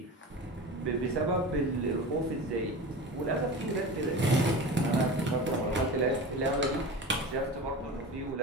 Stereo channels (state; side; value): normal; both; correlation 0.31